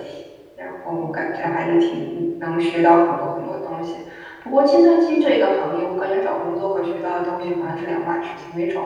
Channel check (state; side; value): identical; both; correlation 1.00